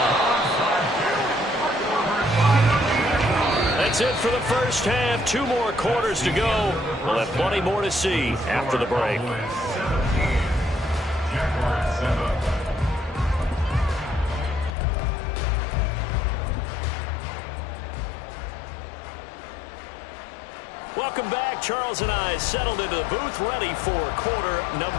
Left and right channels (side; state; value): right; drops out; at 14.8 s